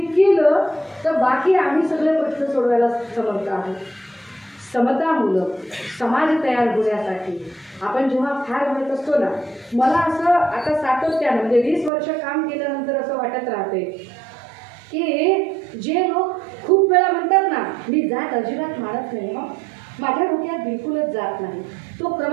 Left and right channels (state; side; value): drops out; left; at 11.9 s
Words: केलं तर बाकी आम्ही सगळे प्रश्न सोडवायला समर्थ आहोत. समतामूलक समाज तयार होण्यासाठी आपण जेव्हा फार म्हणत असतो ना, मला असं आता सातत्यानं म्हणजे 20 वर्ष काम केल्यानंतर असं वाटत राहते की जे लोक खूप वेळा म्हणतात ना, मी जात अजिबात मानत नाही, मग माझ्या डोक्यात बिलकुलच जात नाही, तो